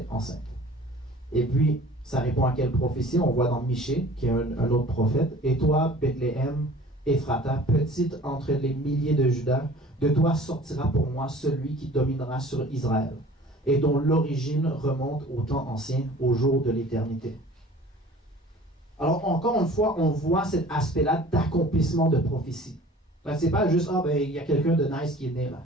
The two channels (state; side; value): normal; both; correlation 0.46